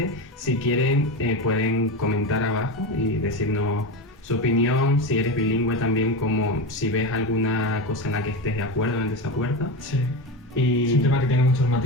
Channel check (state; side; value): normal; both; correlation 0.19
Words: Si quieren, pueden comentar abajo y decirnos su opinión, si eres bilingüe también, como si ves alguna cosa en la que estés de acuerdo o en desacuerdo. Sí. Y... Es un tema que tiene muchos